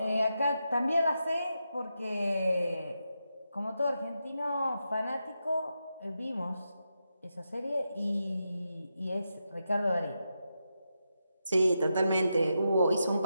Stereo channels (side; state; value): both; inverted; correlation -0.86